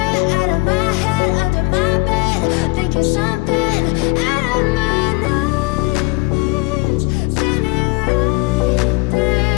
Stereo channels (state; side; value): quieter; right; 25.1 dB